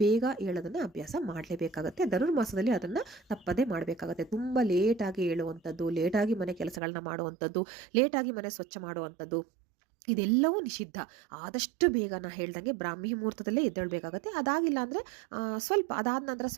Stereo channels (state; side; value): drops out; left; at 6.8 s